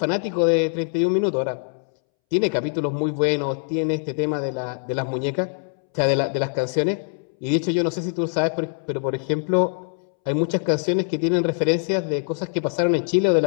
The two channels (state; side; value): silent; right; 63 dB below the other